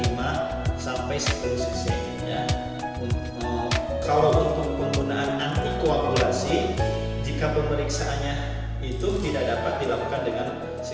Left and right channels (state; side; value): identical; both; correlation 1.00